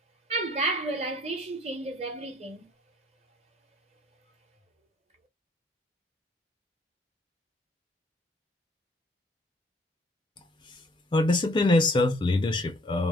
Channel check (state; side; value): normal; both; correlation 0.62